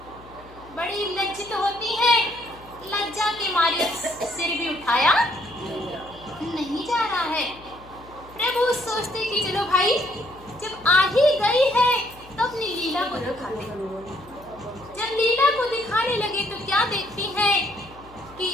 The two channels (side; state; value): left; noise; hum, 22 dB below the sound